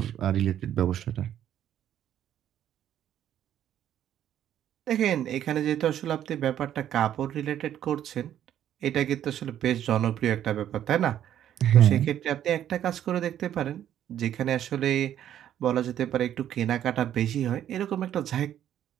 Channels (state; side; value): quieter; left; 10.8 dB